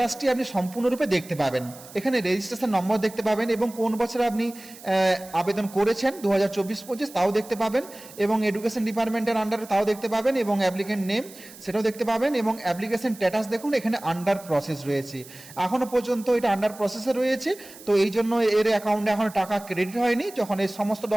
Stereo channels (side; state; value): right; noise; hiss, 19 dB below the sound